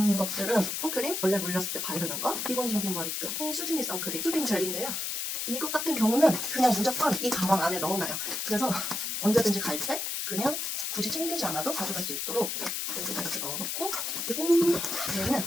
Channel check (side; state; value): left; noise; hiss, 2 dB below the sound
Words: 것들은 선크림, 원래 물렸을 때 바르는 거, 기본적인 머리끈, 수진이 선크림, 수딩 젤인데요. 이것 같은 경우는 그냥 무조건 이 가방 안에 넣어놔요. 그래서 언제든지 갈 때 그냥 굳이 챙기지 않아도 가져갈 수 있도록 여기다 이렇게 넣어놓고 그리고